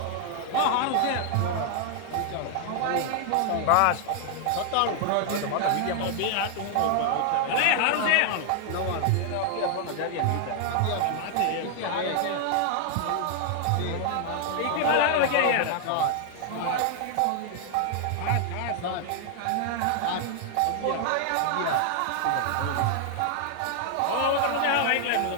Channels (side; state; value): both; different; correlation 0.00